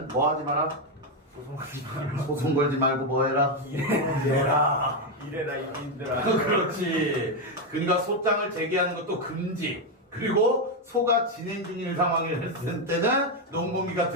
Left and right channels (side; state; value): both; normal; correlation 0.05